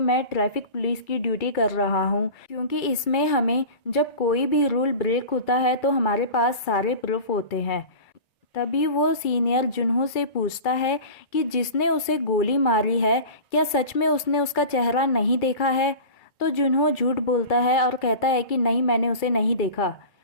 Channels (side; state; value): right; late; 2.3 ms